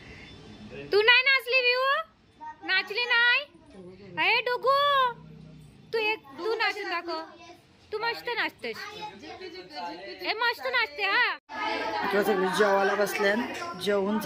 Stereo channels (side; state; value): both; identical; correlation 1.00